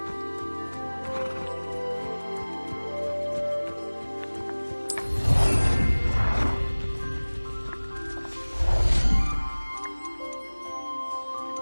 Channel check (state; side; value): inverted; both; correlation -1.00